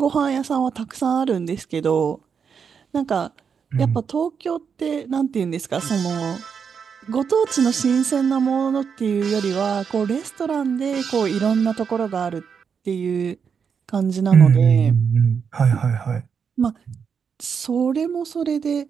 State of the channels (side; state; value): left; quieter; 6.5 dB